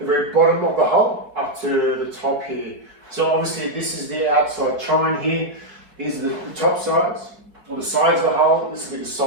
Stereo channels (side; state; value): left; late; 4.8 ms